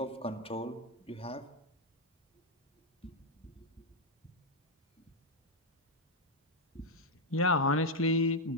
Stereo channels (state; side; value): normal; both; correlation 0.01